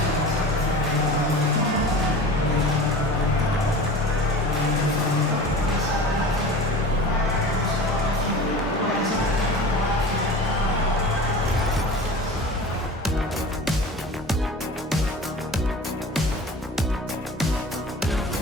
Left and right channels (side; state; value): both; normal; correlation 0.36